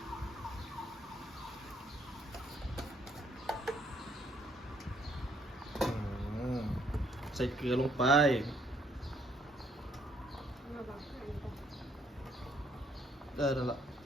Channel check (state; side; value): normal; both; correlation 0.68